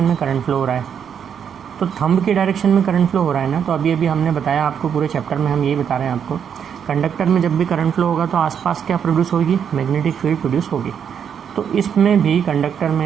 में करंट फ्लो हो रहा है। तो थंब की डायरेक्शन में करंट फ्लो हो रहा है ना, तो अभी हमने बताया आपको, पूरे चैप्टर में हम यही बता रहे हैं आपको, कंडक्टर में जब भी करंट फ्लो होगा तो आसपास क्या प्रोड्यूस होगी, मैग्नेटिक फील्ड प्रोड्यूस होगी। तो इसमें भी कंडक्टर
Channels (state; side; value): quieter; left; 7.9 dB